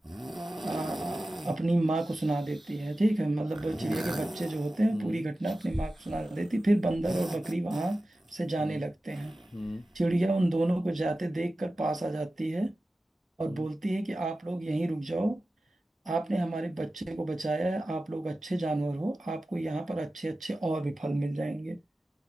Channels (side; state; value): both; normal; correlation 0.95